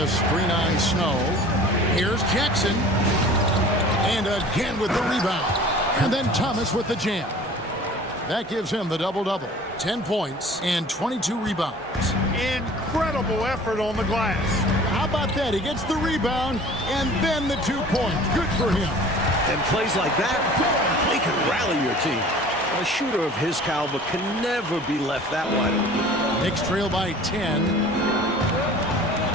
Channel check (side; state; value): both; normal; correlation 0.46